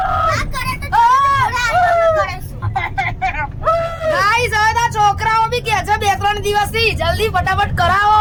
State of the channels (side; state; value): both; identical; correlation 1.00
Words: છોકરાઓ બી કે છે 2-3 દિવસથી, જલ્દી ફટાફટ કરાવો